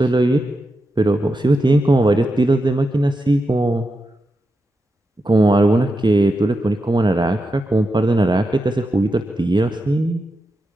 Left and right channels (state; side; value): normal; both; correlation 0.87